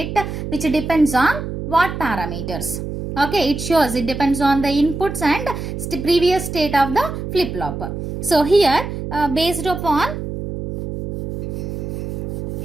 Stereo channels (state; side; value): noise; right; hum, 6 dB below the sound